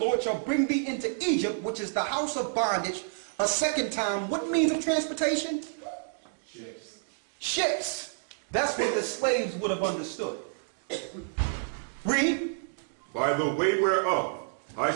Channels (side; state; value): left; silent; digital silence